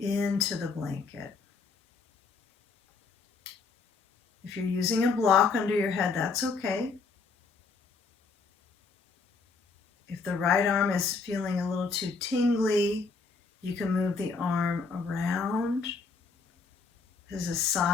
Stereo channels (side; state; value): right; quieter; 4.6 dB